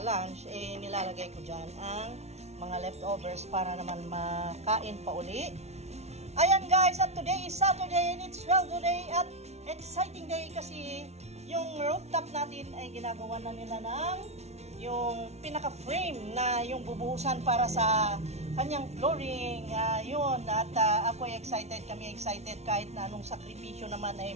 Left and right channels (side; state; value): left; late; 0.31 ms